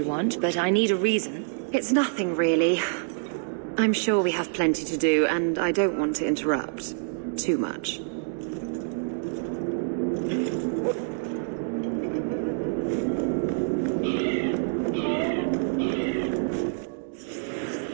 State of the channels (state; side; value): silent; left; digital silence